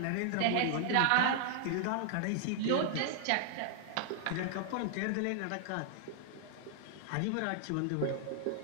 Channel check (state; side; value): different; both; correlation 0.00